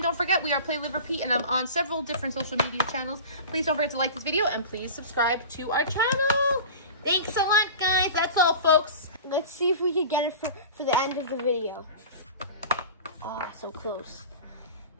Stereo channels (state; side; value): inverted; both; correlation -0.35